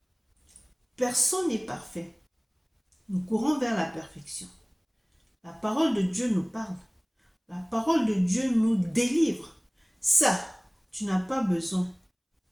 Personne n'est parfait. Nous courons vers la perfection. La parole de Dieu nous parle. La parole de Dieu nous délivre. Ça, tu n'as pas besoin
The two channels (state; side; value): identical; both; correlation 1.00